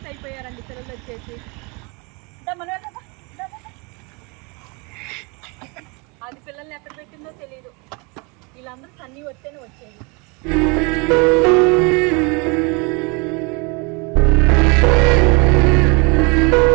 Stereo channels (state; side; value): quieter; left; 30.1 dB